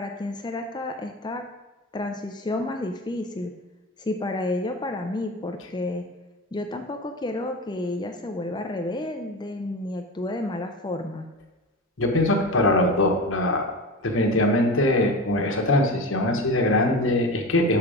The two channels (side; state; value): both; normal; correlation 0.27